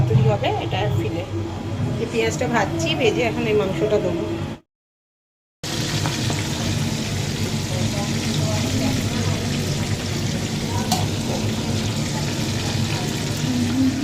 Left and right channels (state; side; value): identical; both; correlation 1.00